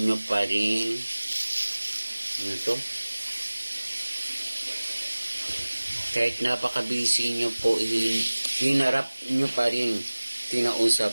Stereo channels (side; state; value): both; inverted; correlation -1.00